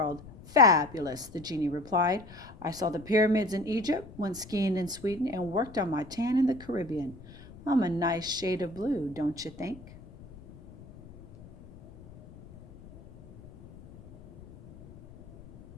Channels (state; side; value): noise; left; rumble, 19 dB below the sound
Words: "Fabulous," the genie replied. "I saw the pyramids in Egypt, went skiing in Sweden, and worked on my tan in the Caribbean. I'm a nice shade of blue, don't you think?"